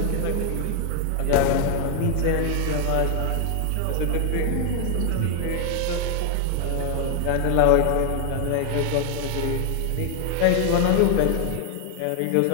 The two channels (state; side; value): different; both; correlation 0.00